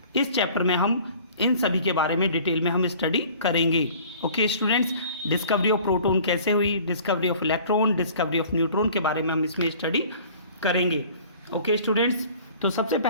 इस चैप्टर में हम इन सभी के बारे में डिटेल में हम स्टडी करेंगे. Okay students, discovery of proton कैसे हुई, discovery of electron, discovery of neutron के बारे में हम इसमें स्टडी करेंगे. ओके स्टूडेंट्स, तो सबसे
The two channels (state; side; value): inverted; both; correlation -0.48